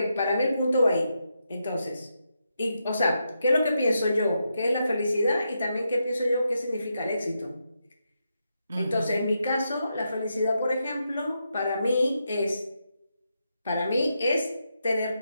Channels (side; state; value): both; inverted; correlation -0.84